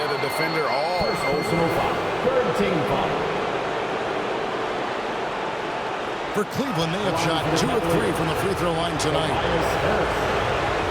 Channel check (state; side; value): identical; both; correlation 1.00